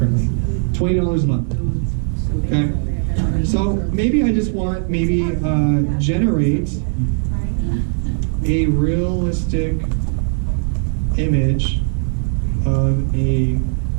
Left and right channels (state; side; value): silent; left; 61 dB below the other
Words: $20 a month, okay? So maybe I just want, generate a realistic image of a